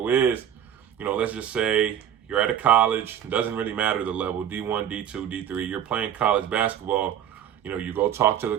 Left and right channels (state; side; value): quieter; left; 9.7 dB